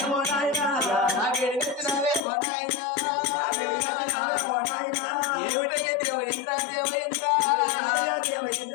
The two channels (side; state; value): right; drops out; at 2.2 s